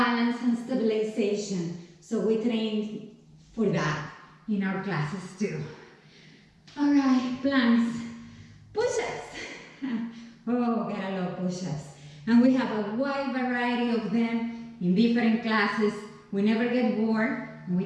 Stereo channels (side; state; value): both; identical; correlation 1.00